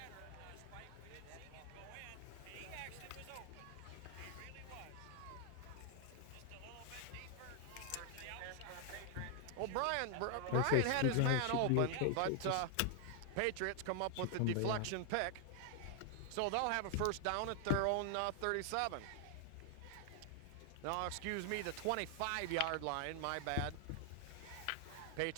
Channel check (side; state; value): both; different; correlation 0.00